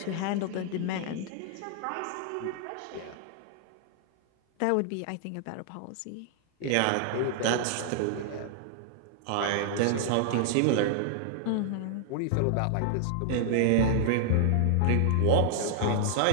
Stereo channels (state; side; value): different; both; correlation -0.01